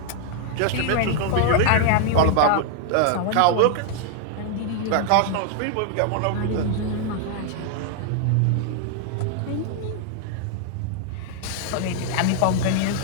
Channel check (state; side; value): different; both; correlation 0.00